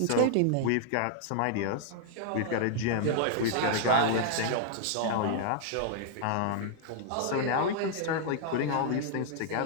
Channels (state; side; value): different; both; correlation -0.01